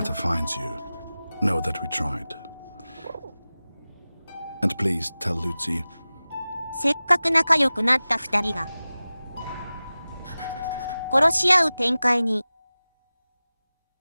finds you, know that we tried. And please tell Lucy, せっかく仲良くなった二人が殺し合う展開に。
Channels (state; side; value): inverted; both; correlation -0.97